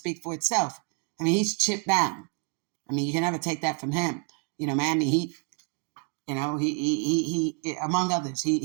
for itself. He's chip bound. You can never take that from him. Miami Heat, he among others,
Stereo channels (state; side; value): quieter; left; 39.4 dB